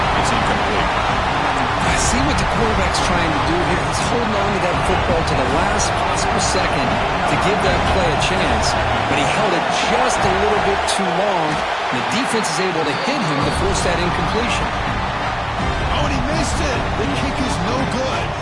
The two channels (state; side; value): identical; both; correlation 1.00